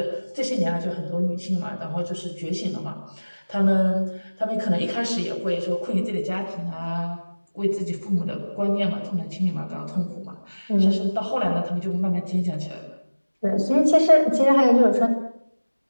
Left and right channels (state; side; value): inverted; both; correlation -1.00